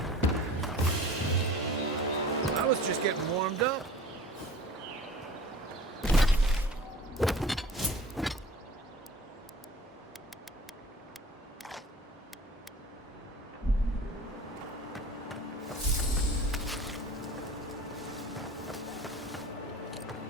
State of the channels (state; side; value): normal; both; correlation 0.43